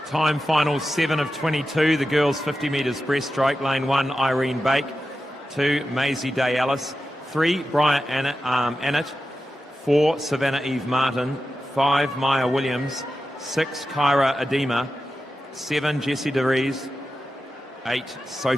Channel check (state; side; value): normal; both; correlation 0.91